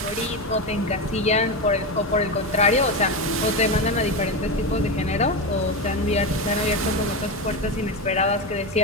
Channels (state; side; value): normal; both; correlation 0.15